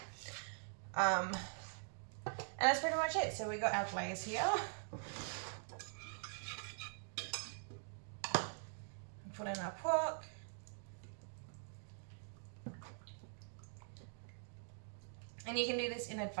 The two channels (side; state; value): left; silent; digital silence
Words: And that's pretty much it. So we got our glaze here. Put in our pork. And you can do this in